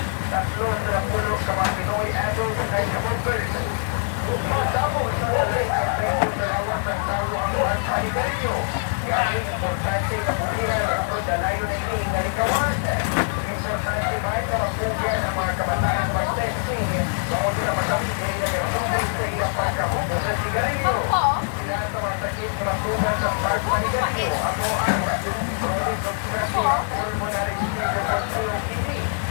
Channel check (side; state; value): right; silent; digital silence